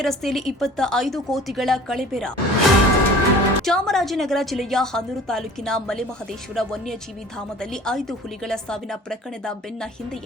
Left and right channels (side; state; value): both; normal; correlation 0.46